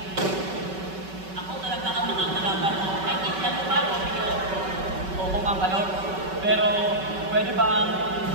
Pero, pwede bang...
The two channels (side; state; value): left; late; 5.3 ms